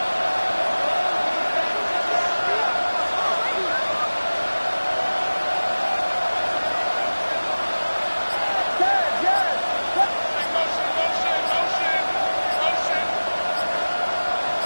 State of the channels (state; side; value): inverted; both; correlation -1.00